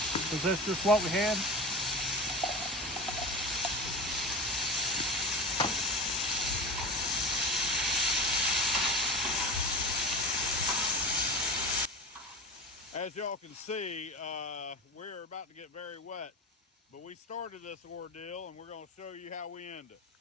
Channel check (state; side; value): normal; both; correlation 0.29